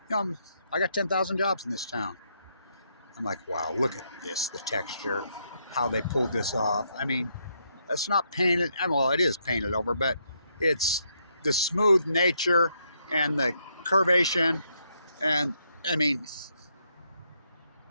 got 10,000 jobs in this town. I'm like, wow, look at this, the texture, how they pulled this off. I mean, that's not painted. Well, it is painted over, but it's the smooth nature and the curvation. And I mean,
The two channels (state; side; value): inverted; both; correlation -0.76